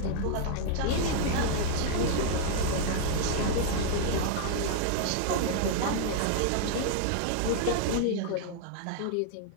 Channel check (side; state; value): both; different; correlation 0.00